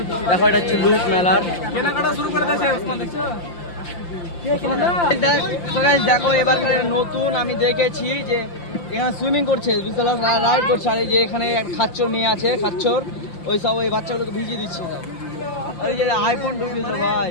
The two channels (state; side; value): late; right; 5.8 ms